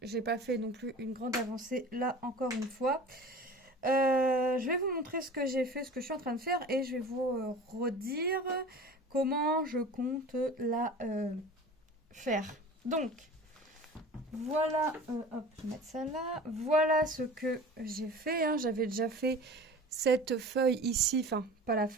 j'ai pas fait non plus une grande avancée là encore une fois. Je vais vous montrer ce que j'ai fait, ce que je suis en train de faire et je vais vous redire comment je compte la faire. Donc voilà, hop, je vais mettre ça là. Voilà ce que j'ai fait, hein. J'avais déjà fait cette feuille ici, enfin pas la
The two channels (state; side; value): normal; both; correlation 0.38